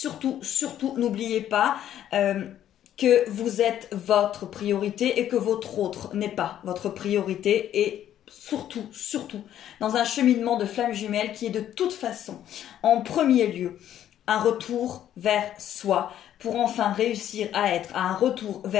n'oubliez pas que vous êtes votre priorité et que votre autre n'est pas votre priorité. Et surtout, dans un cheminement de flamme jumelle qui est de toute façon, en premier lieu, un retour vers soi pour enfin réussir à être à un retour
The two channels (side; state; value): right; quieter; 11.1 dB